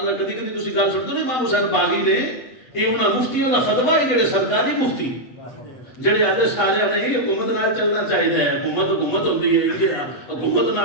کدی کدی تسی گل سنتے ہو امام حسین باغی نے, یہ انہاں مفتیوں دا فتویٰ ہے جڑے سرکاری مفتی جڑے آدھے سارے نہیں حکومت نال چلنا چاہیے ہے, حکومت ہوندی ہے, یہ حکومت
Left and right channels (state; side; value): late; right; 7.8 ms